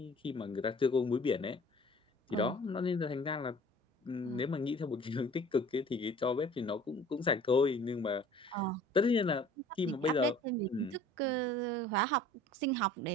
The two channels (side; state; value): both; normal; correlation 0.48